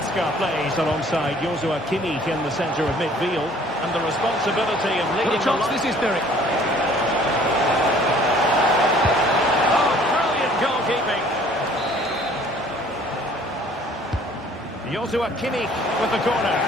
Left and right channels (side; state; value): both; normal; correlation 0.55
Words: plays alongside Joshua Kimmich in the centre of midfield. And the responsibility of leading What a chance this is, Derek. Goalkeeping. Joshua Kimmich with the corner.